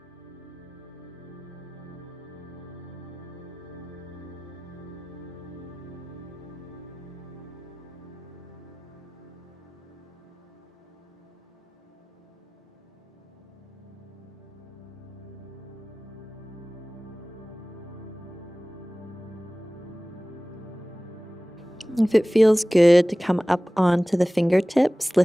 If it feels good to come up onto the fingertips,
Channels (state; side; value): normal; both; correlation 0.98